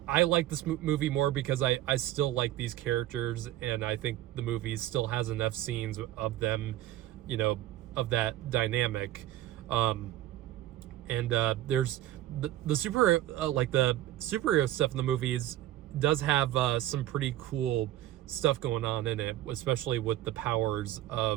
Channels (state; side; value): quieter; left; 13.9 dB